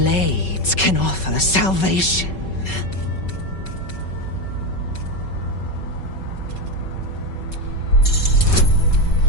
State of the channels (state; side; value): late; right; 5.3 ms